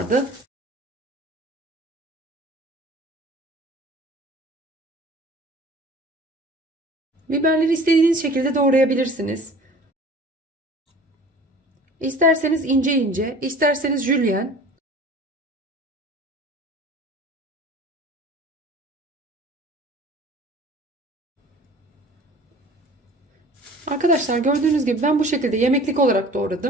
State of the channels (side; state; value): both; normal; correlation 0.45